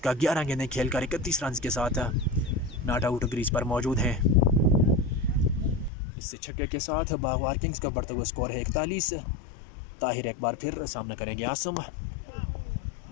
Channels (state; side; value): drops out; right; at 5.9 s